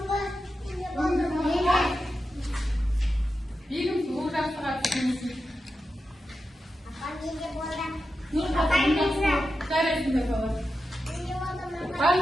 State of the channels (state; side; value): normal; both; correlation 0.90